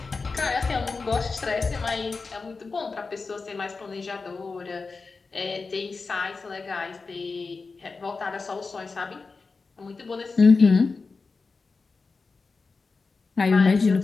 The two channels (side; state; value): right; quieter; 4.3 dB